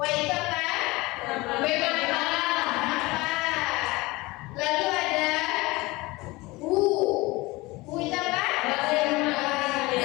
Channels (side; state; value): right; quieter; 21.9 dB